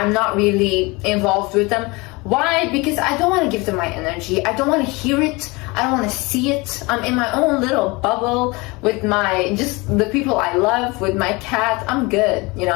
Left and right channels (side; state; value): right; quieter; 25.1 dB